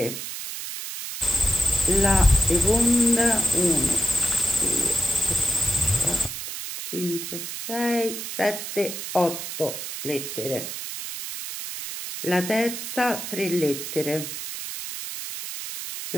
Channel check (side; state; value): right; noise; hiss, 7 dB below the sound